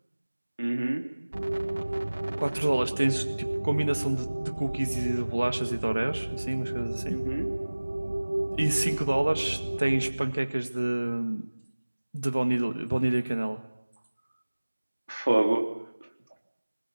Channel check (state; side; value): inverted; both; correlation -1.00